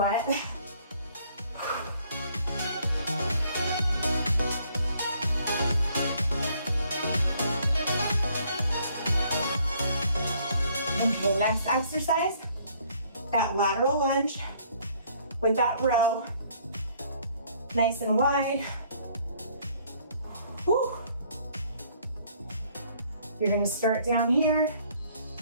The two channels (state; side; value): inverted; both; correlation -0.63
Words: Okay, next exercise, that lateral lunge with that row, nice and wide. Whew. You're gonna start down here,